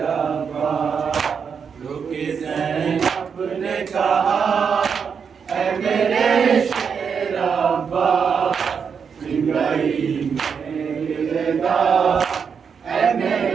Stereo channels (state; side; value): quieter; left; 6.5 dB